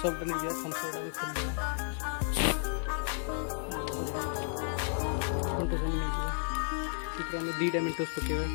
नहीं जाए। थम्सअप आम खोल मेंटोस आम नहीं जाए। आम दीटा मेंटोस पकेबा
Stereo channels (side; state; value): right; silent; digital silence